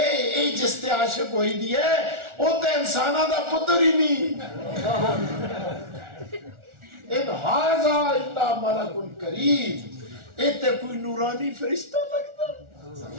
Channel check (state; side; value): late; left; 1.4 ms